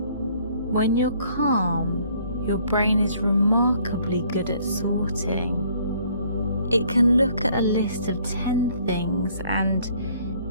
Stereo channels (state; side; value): inverted; both; correlation -0.61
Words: When you're calm, your brain is remarkably good at sorting. It can look at a list of 10 things and